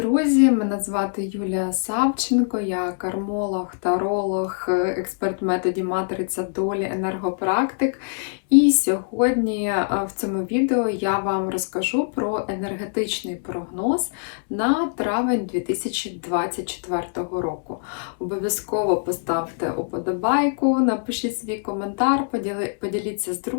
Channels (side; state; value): right; silent; digital silence